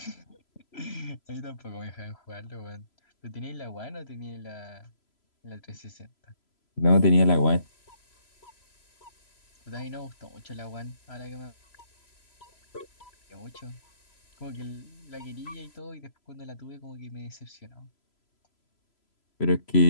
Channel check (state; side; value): late; right; 3.0 ms